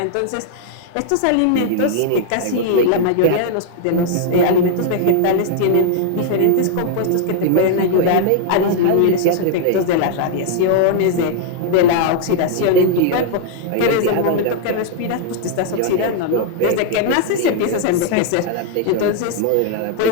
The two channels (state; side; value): different; both; correlation -0.01